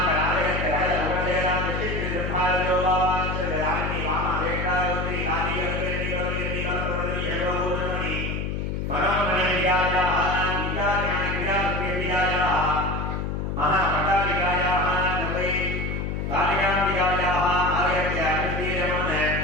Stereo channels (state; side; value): noise; left; hum, 2 dB below the sound